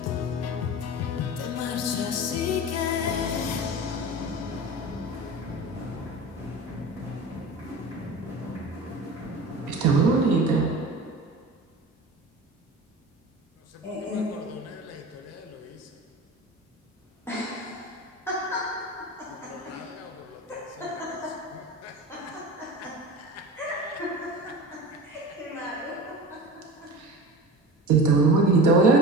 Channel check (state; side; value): normal; both; correlation 0.33